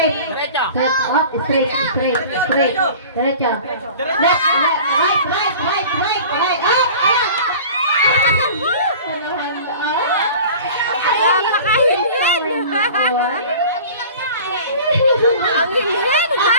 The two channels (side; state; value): both; inverted; correlation -0.41